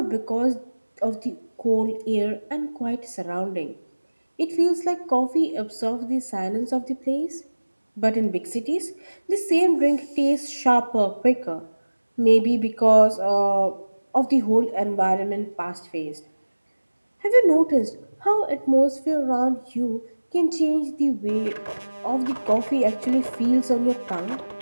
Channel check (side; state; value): both; inverted; correlation -1.00